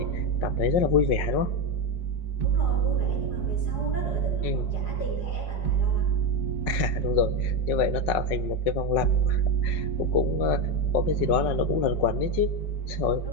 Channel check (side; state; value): right; late; 5.4 ms